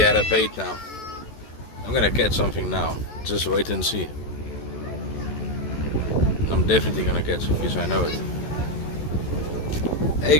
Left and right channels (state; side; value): late; right; 14 ms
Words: had a bait now. I'm gonna catch something now. Just wait and see. I'm definitely gonna catch a fish, I know it. Hey